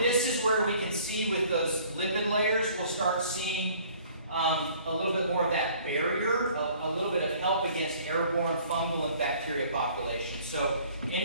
is where we can see with those lipid layers, we'll start seeing a little bit more of that barrier, a little bit of help against airborne fungal and bacteria populations. So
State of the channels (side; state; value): both; inverted; correlation -0.55